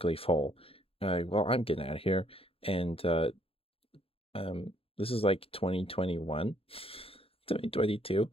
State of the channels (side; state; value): right; late; 0.27 ms